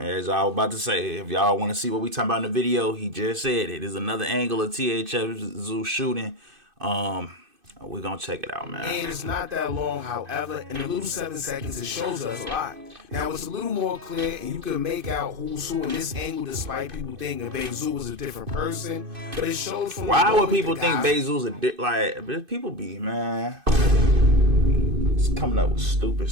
I was about to say, if y'all want to see what we talking about in the video, he just said it. There's another angle of THF Zoo shooting. We're going to check it out, man. And it's not that long, however, in a little 7 seconds, it shows us a lot. Now, it's a little more clear, and you can make out who's who in this angle, despite people thinking Bayzoo was a different person. But it shows from... Why would people think Bayzoo's like, people be, man... It's coming up with stupid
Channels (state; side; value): late; left; 2.5 ms